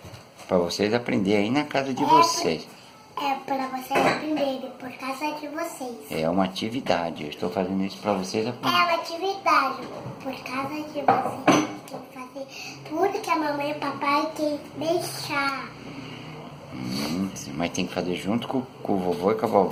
Pra vocês aprenderem aí na casa de vocês. É para vocês aprenderem por causa de vocês. É uma atividade. Eu estou fazendo isso pra vocês É aprenderem. uma atividade por causa de vocês. Tem que fazer tudo que a mamãe e o papai tem deixar. Mas tem que fazer junto com o vovô e com a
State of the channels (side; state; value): both; identical; correlation 1.00